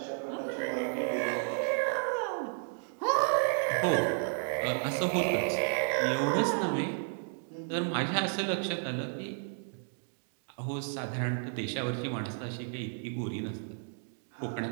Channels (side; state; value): left; silent; 56 dB below the other